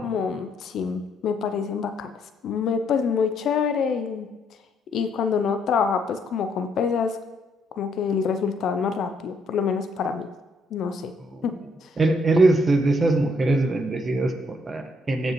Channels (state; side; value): normal; both; correlation 0.71